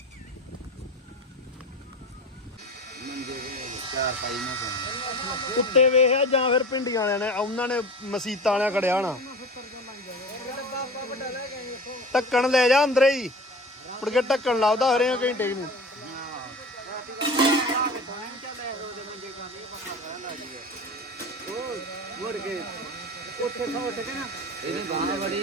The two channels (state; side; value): normal; both; correlation 0.34